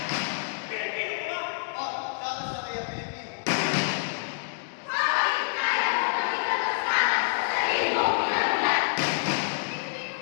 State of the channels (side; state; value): right; silent; digital silence